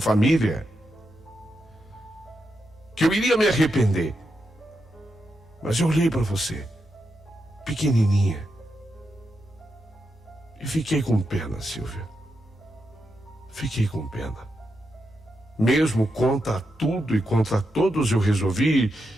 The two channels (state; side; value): normal; both; correlation 0.85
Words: Que eu iria me arrepender. Mas eu olhei para você, pequenininha, e fiquei com pena, Silvia. Fiquei com pena. Mesmo contra tudo e contra todos, eu resolvi